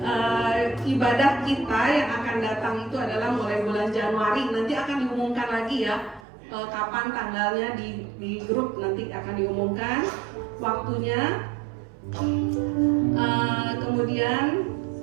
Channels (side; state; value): left; drops out; at 6.2 s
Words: ibadah kita yang akan datang itu adalah mulai bulan Januari. Nanti akan diumumkan lagi ya kapan tanggalnya di grup, nanti akan diumumkan waktunya. Kemudian